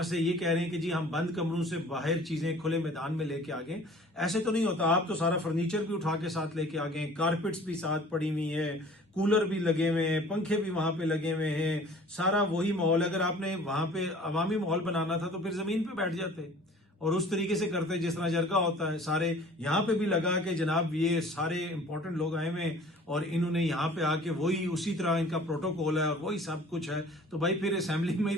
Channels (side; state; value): both; normal; correlation 0.48